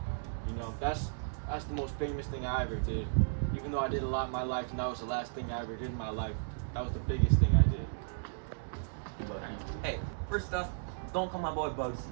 You know, that's the most famous thing I ever did. Even though I did a lot in my life, and that was the last thing I ever did in my life, that was the biggest thing I did. Hey, first off, don't call my boy Bugsy.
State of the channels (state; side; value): silent; left; digital silence